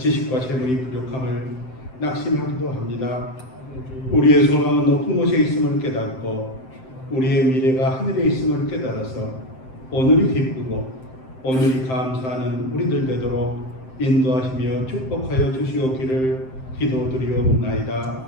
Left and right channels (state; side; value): late; right; 7.7 ms